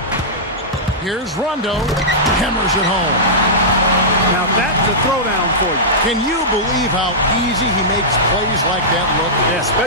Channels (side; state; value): both; normal; correlation -0.14